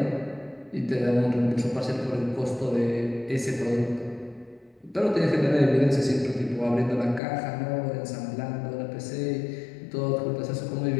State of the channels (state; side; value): drops out; right; at 7.2 s